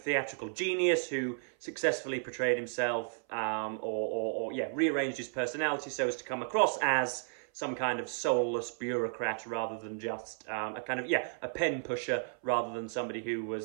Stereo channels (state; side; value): silent; left; 55 dB below the other